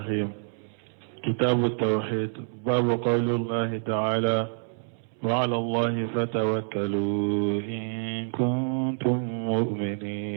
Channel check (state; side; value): silent; left; 60 dB below the other